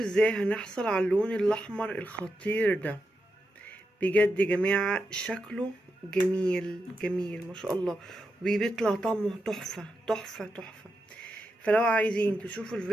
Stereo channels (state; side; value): normal; both; correlation 0.87